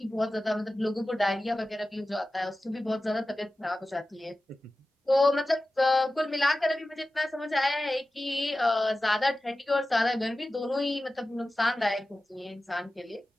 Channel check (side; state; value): both; normal; correlation 0.95